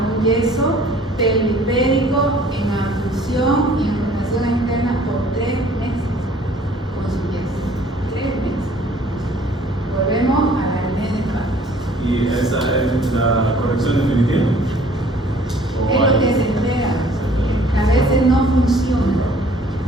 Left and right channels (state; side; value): normal; both; correlation 0.55